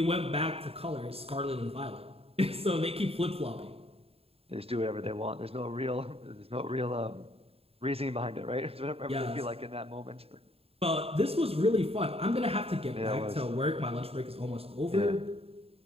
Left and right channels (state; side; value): late; left; 0.28 ms